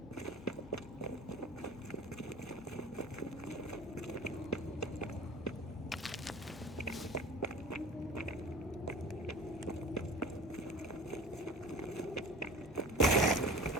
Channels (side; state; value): both; normal; correlation 0.40